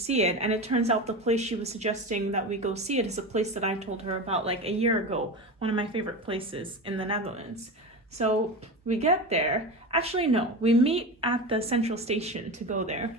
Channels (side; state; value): both; normal; correlation 0.25